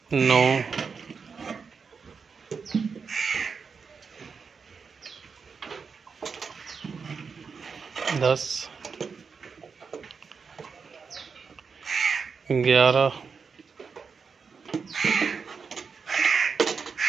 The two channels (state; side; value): quieter; left; 5.5 dB